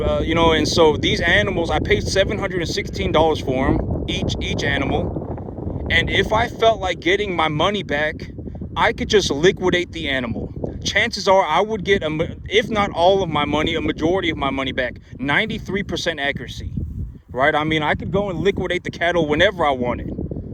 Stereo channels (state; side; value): identical; both; correlation 1.00